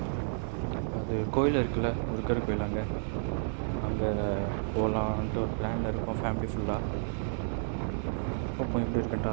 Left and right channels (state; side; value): silent; left; 57 dB below the other